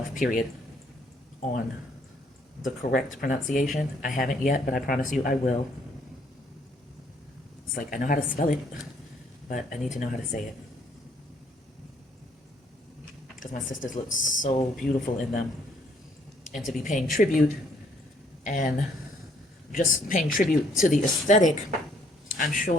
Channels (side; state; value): both; normal; correlation 0.66